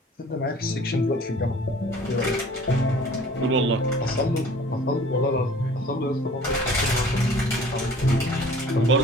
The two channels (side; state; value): both; normal; correlation 0.49